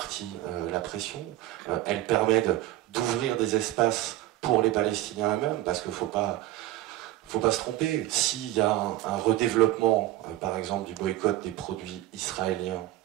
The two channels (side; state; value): left; quieter; 15.3 dB